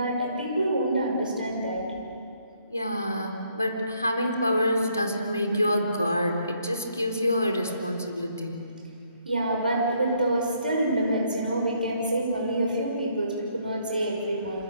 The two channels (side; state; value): both; inverted; correlation -0.69